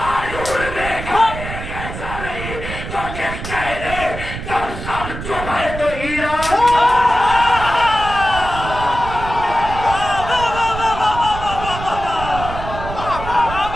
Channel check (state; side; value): noise; right; rumble, 8 dB below the sound